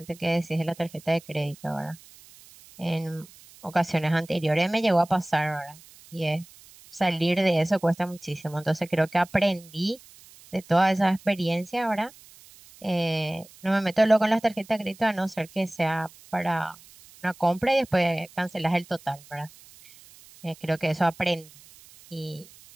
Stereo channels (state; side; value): noise; right; hiss, 23 dB below the sound